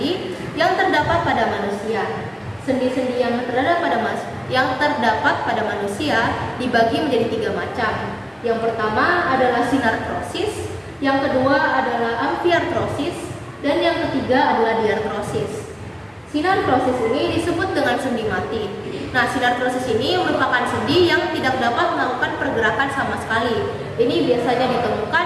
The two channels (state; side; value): identical; both; correlation 1.00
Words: yang terdapat pada manusia. Sendi-sendi yang terdapat pada manusia dibagi menjadi 3 macam. Yang pertama adalah sinartrosis, yang kedua adalah amfiartrosis, dan yang ketiga adalah diartrosis. Sinartrosis ini disebut dengan sendi mati. Nah, sinartrosis ini merupakan sendi yang tidak dapat melakukan pergerakan sama sekali. Ini biasanya ditemukan